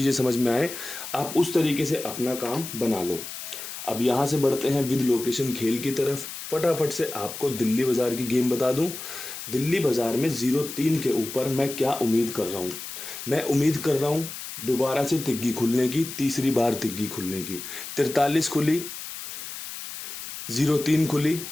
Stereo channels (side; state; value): left; noise; hiss, 9 dB below the sound